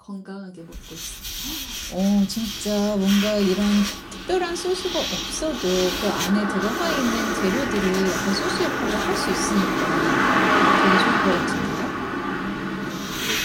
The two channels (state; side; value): identical; both; correlation 1.00